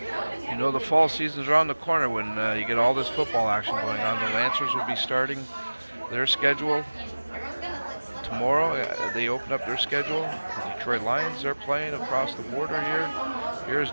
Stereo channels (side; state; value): both; inverted; correlation -1.00